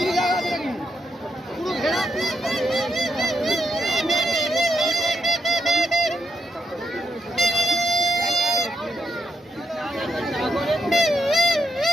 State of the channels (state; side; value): normal; both; correlation 0.81